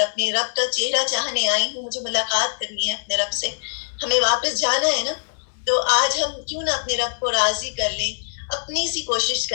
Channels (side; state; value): right; silent; 64 dB below the other